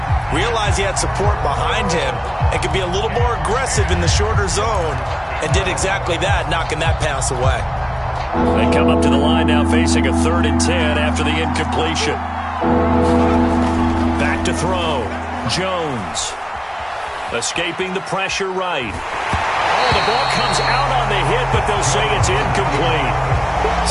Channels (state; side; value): identical; both; correlation 1.00